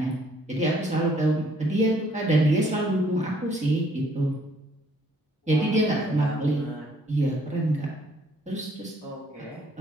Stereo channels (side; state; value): both; normal; correlation 0.64